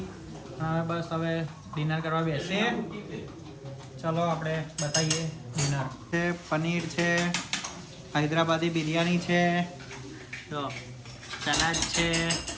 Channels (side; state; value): both; identical; correlation 1.00